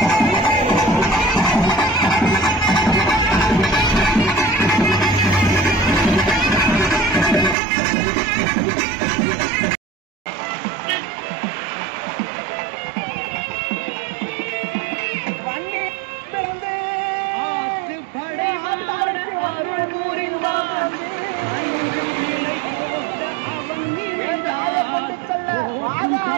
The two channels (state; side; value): drops out; left; at 7.6 s